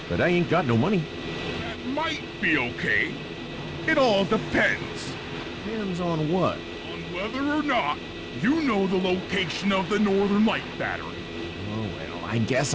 but I ain't got no money. That might be okay. It all depends. Depends on what? On whether or not you know the location of the Northern Light Battery. Oh, well, I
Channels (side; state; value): both; identical; correlation 1.00